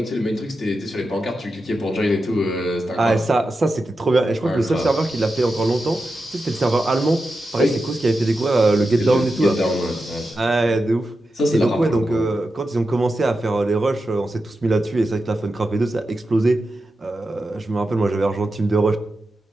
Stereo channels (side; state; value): both; normal; correlation 0.90